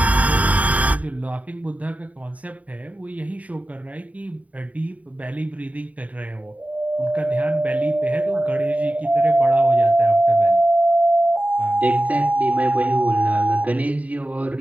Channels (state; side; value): late; left; 0.070 ms